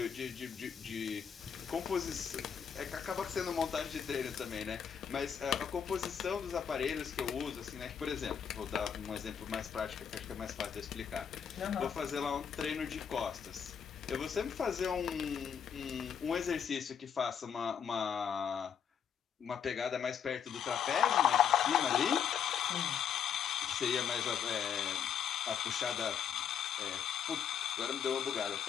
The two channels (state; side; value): quieter; right; 8.0 dB